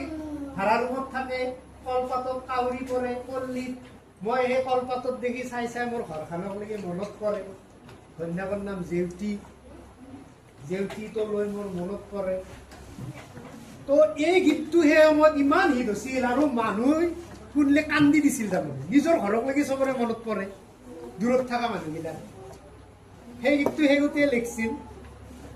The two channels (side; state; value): both; identical; correlation 1.00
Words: ভাড়া ৰুমত থাকে কলপাতত কাউৰী পৰে পল্লীত মই সেই কলপাতত দেখি চাই চাই মোৰ ঘৰখনকলৈকে মনত পৰে ঘৈণীয়েকৰ নাম জেউতি জেউতিটো লৈ মোৰ মনত পৰে তো এই গীতটো সেই সময়ত ইমান হিট হৈছিল আৰু মানুহ শুনিলে কান্দি দিছিল তাৰমানে নিজৰ ঘৰকলৈকে চবৰে মনত পৰে দূৰত থকা মানুহবিলাক সেই গীতটো সেইগতেই লিখিছিল